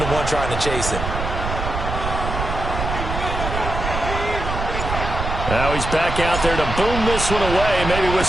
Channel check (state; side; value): noise; right; rumble, 4 dB below the sound